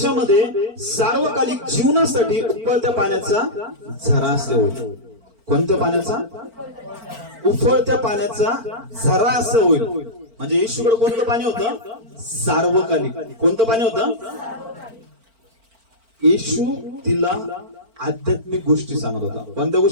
सार्वकालिक जीवनासाठी उकळत्या पाण्याचा झरा असे होईल. कोणत्या पाण्याचा? उफळत्या पाण्याचा झरा असं होईल. म्हणजे येशूकडे कोणतं पाणी होतं? सार्वकालिक. कोणतं पाणी होतं? येशू तिला आध्यात्मिक गोष्टी सांगत होता. कोणत्या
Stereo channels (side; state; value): left; late; 4.4 ms